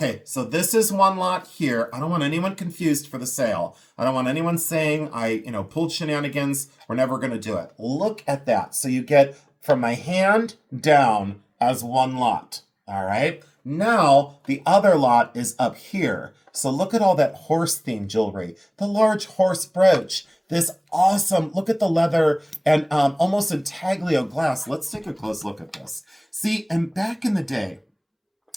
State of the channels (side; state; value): both; identical; correlation 1.00